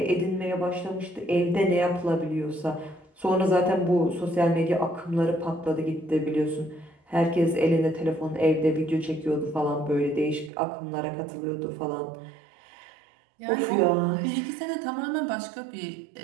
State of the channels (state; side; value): drops out; left; at 10.5 s